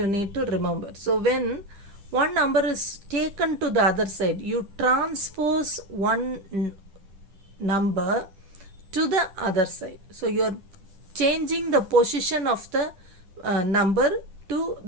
need to remember. So when one number is taken to the other side, you transpose one number to the other side. So you are changing the position of the number to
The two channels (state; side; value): late; left; 11 ms